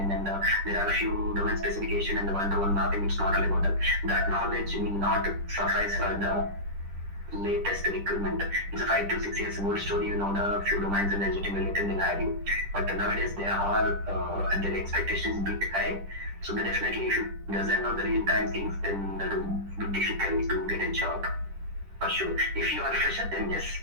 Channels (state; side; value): late; left; 10 ms